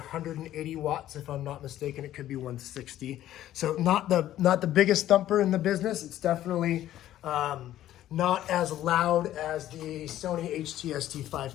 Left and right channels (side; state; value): right; quieter; 13.0 dB